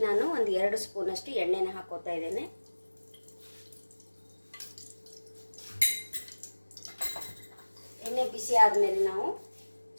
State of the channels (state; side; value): inverted; both; correlation -1.00